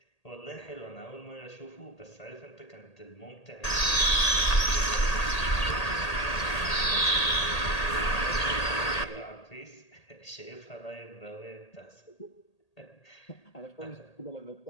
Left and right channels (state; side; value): late; right; 1.8 ms